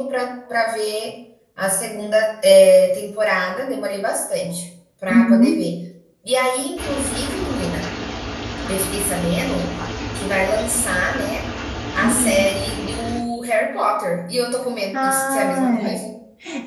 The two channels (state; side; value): identical; both; correlation 1.00